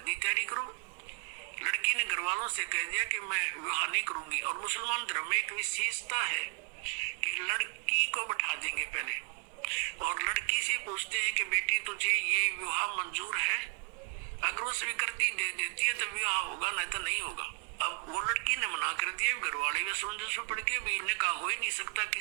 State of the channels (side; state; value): left; quieter; 33.2 dB